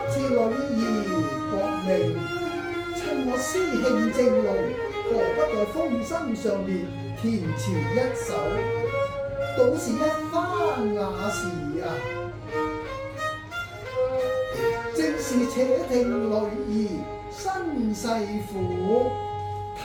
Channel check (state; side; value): identical; both; correlation 1.00